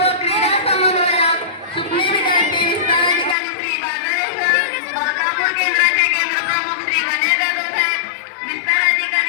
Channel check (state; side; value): drops out; right; at 3.4 s